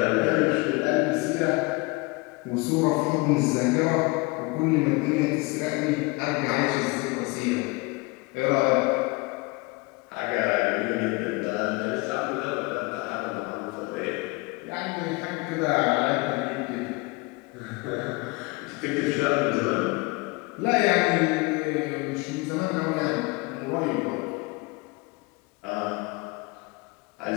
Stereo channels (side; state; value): right; quieter; 25.8 dB